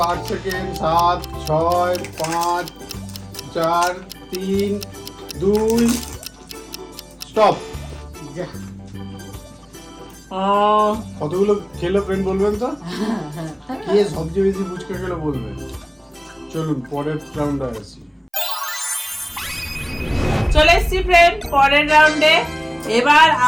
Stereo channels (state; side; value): identical; both; correlation 1.00